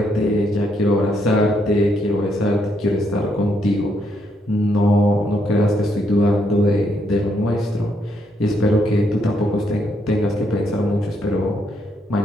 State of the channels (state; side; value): normal; both; correlation 0.75